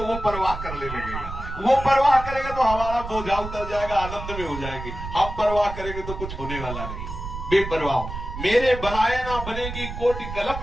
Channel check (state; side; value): noise; right; rumble, 8 dB below the sound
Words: वो परवाह कर ले लगेगा। वो परवाह करेगा तो हमारा बोझा उतर जाएगा, आनंद में हो जाएगी। हम परवाह करेंगे तो कुछ होने वाला नहीं। बेपरवाह, मेरे बनाए ना बनेगी कोटि